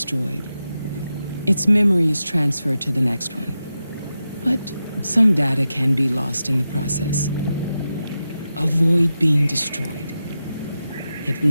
its memory is transferred to the next one. But some data can be lost in the process. Avoid being destroyed. It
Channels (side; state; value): both; inverted; correlation -0.90